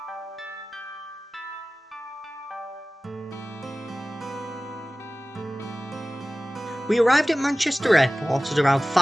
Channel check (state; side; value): normal; both; correlation 0.97